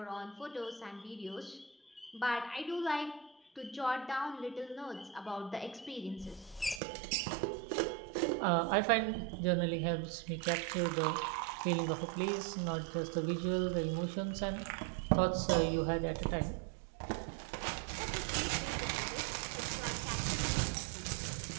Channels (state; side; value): drops out; left; at 6.8 s